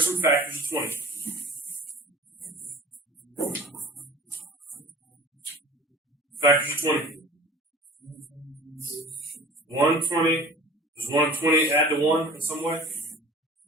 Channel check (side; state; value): both; normal; correlation 0.43